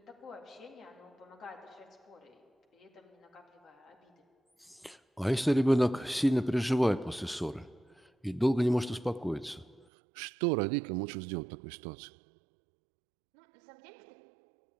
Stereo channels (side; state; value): left; drops out; at 9.9 s